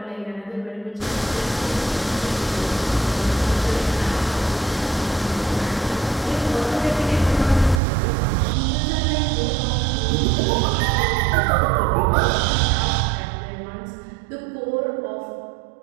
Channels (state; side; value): drops out; left; at 7.8 s